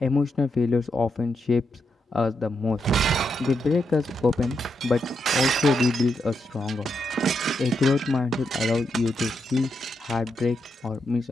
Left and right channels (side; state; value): both; normal; correlation 0.83